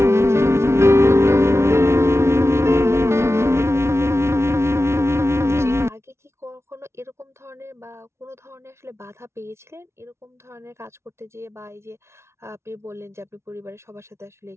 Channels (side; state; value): left; late; 0.13 ms